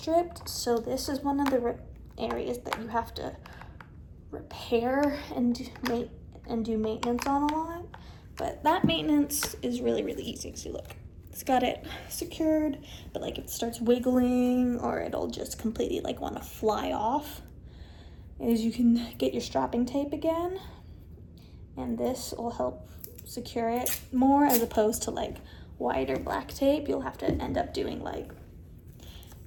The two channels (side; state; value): both; identical; correlation 1.00